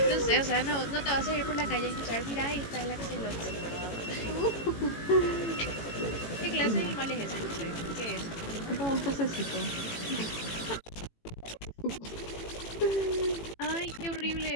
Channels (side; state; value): right; late; 18 ms